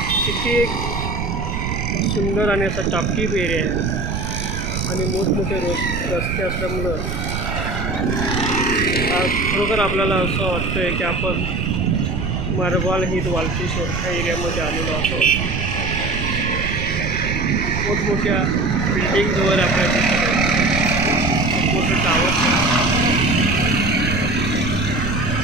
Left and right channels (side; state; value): right; noise; rumble, 3 dB below the sound